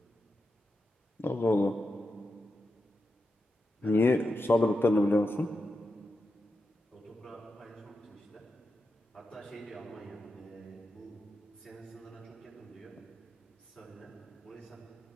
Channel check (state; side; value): normal; both; correlation 0.88